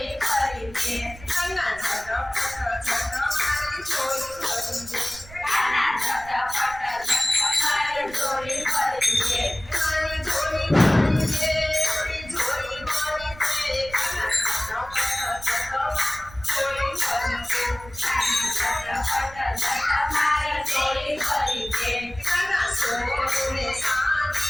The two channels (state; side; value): noise; right; rumble, 18 dB below the sound